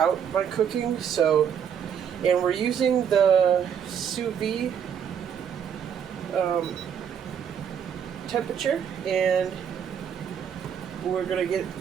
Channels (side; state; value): left; quieter; 8.0 dB